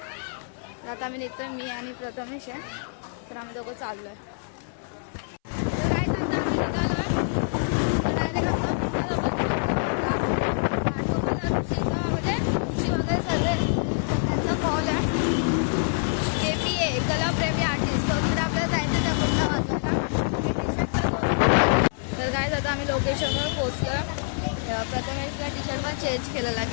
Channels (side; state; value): right; silent; 61 dB below the other